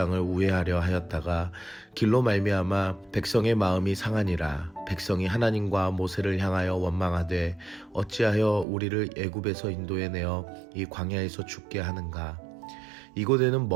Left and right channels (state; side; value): drops out; left; at 8.7 s